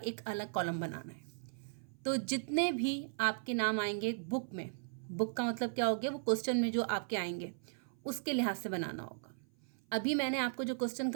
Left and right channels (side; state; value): left; silent; 53 dB below the other